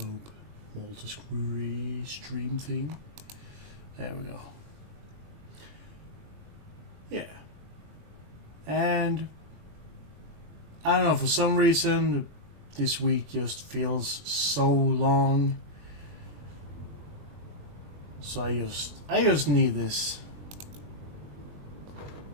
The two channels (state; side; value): late; left; 21 ms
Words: multi-screw stream thing. There we go. Yeah. And I don't know, for some reason this week just feels so long. So I just need this.